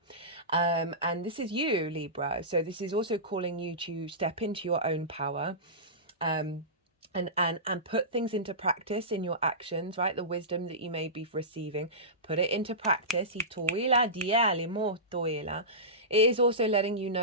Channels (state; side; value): normal; both; correlation -0.19